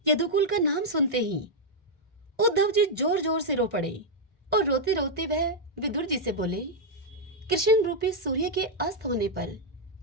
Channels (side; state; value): both; normal; correlation -0.03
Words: यदुकुल का नाम सुनते ही उद्धव जी जोर जोर से रो पड़े और रोते रोते वह विदुर जी से बोले, कृष्ण रूपी सूर्य के अस्त होने पर,